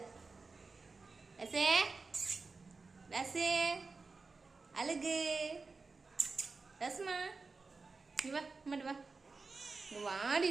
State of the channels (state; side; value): quieter; left; 4.1 dB